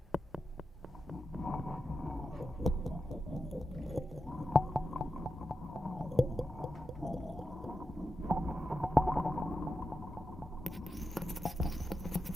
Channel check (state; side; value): normal; both; correlation 0.89